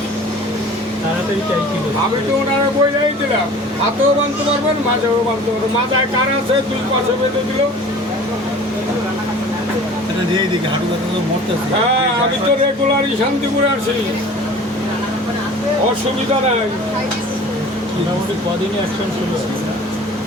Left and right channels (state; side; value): normal; both; correlation 0.44